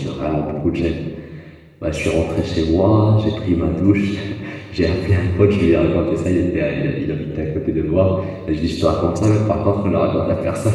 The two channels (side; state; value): both; identical; correlation 1.00